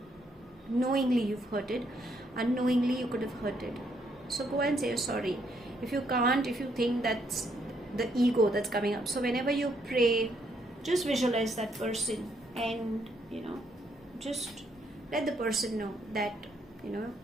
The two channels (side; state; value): both; normal; correlation 0.73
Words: knowingly you've hurted. Unknowingly you could have hurted. So go and say sorry. If you can't, if you think that's the ego that's coming up, so whenever you pray, just visualize that person and just let the person know that